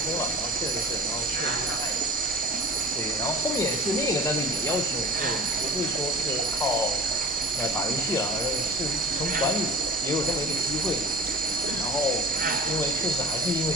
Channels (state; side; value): normal; both; correlation 0.42